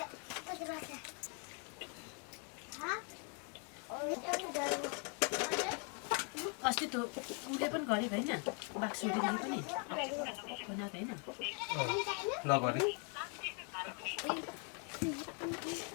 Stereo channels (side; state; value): right; quieter; 38.8 dB